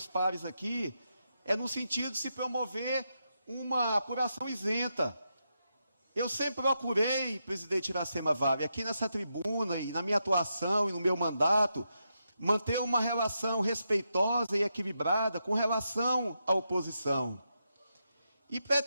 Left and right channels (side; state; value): both; inverted; correlation -0.85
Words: pares aqui é no sentido de se promover uma apuração isenta. Eu sempre procurei, presidente Iracema Vale, aqui nessa tribuna e na minha atuação e no meu mandato, manter uma relação respeitosa e equilibrada com relação à oposição. E